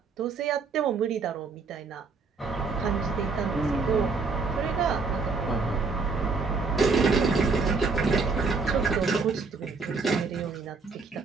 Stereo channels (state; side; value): quieter; left; 4.4 dB